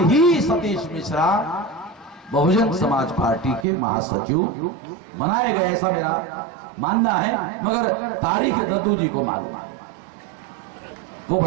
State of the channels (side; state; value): left; drops out; at 3.7 s